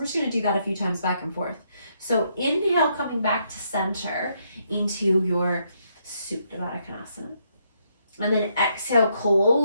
just going to do that a few times back and forth. So inhale, coming back to center into your Supta Baddha Konasana. And then exhale,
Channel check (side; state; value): both; inverted; correlation -0.75